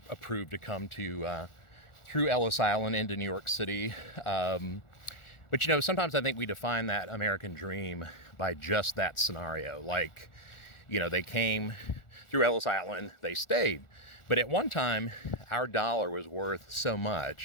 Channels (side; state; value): right; late; 1.4 ms